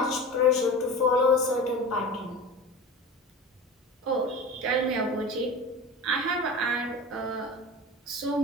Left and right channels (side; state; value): both; normal; correlation 0.33